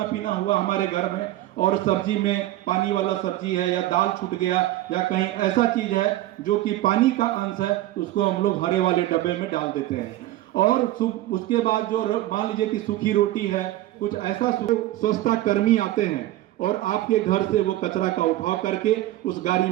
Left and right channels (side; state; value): left; quieter; 15.4 dB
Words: पीना हुआ हमारे घर में और सब्जी में पानी वाला सब्जी है या दाल छूट गया या कहीं ऐसा चीज है जो कि पानी का अंश है, उसको हम लोग हरे वाले डब्बे में डाल देते हैं। और उसके बाद जो मान लीजिए कि सूखी रोटी है, कुछ ऐसा स्वच्छता कर्मी आते हैं और आपके घर से वो कचरा का उठाव करके उस गाड़ी